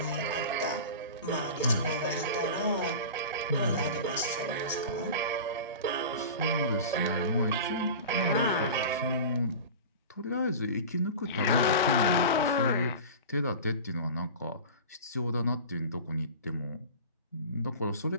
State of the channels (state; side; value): inverted; both; correlation -0.33